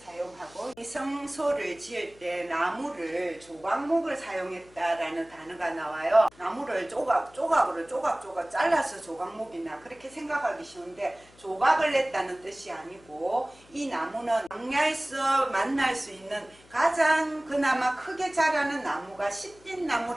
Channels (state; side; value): noise; left; hum, 27 dB below the sound